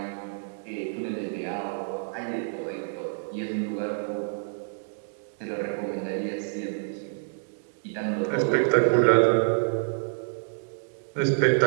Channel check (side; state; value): left; silent; digital silence